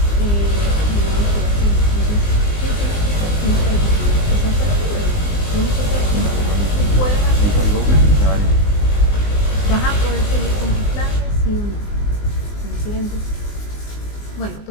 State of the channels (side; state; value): right; late; 19 ms